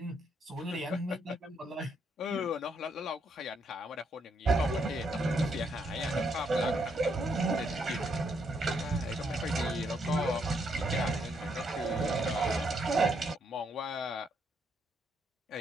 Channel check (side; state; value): both; normal; correlation 0.75